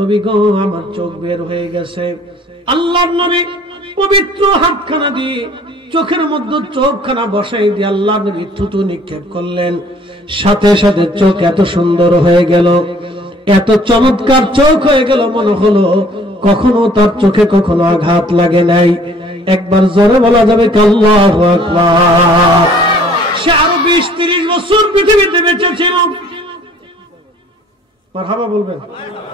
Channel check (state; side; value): normal; both; correlation 0.55